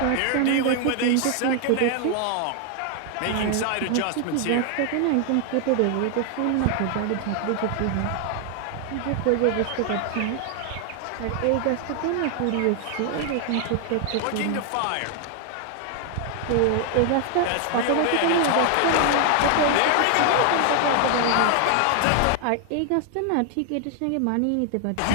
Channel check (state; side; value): different; both; correlation 0.00